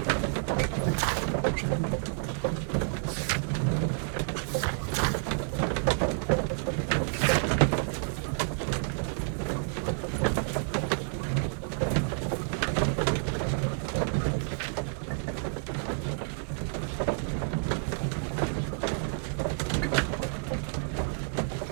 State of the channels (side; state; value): left; silent; 58 dB below the other